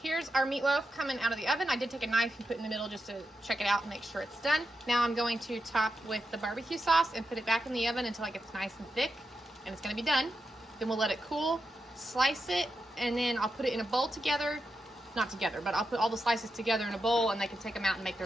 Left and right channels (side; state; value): both; normal; correlation 0.87